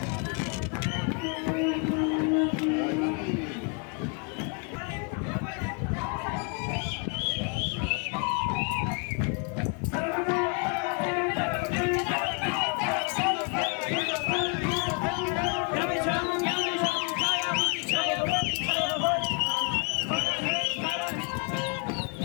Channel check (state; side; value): quieter; right; 36.3 dB